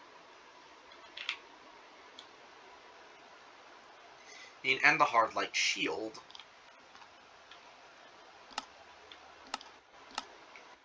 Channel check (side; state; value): both; identical; correlation 1.00